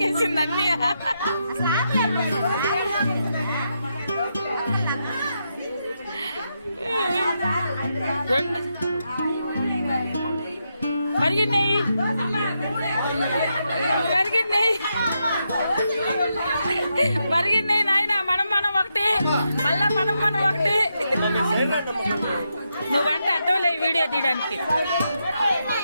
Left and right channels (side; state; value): both; inverted; correlation -0.83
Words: అన్నీ. రెండు మరిగినాయి మరిగినాయి నాయన. మనం ఒకటి మళ్ళా మనం ఒకటి. నువ్వంట అడ్డోలే వీడియో తీయడానికి.